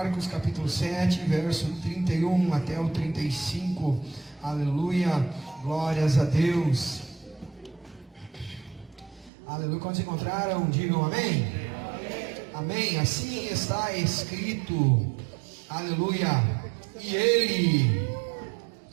capítulo 7, verso 31 até o 35. Aleluia, glórias a Deus. Aleluia, quando se encontraram, digam amém. Amém, assim está escrito. Aleluia, e ele,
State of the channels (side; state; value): left; drops out; at 9.3 s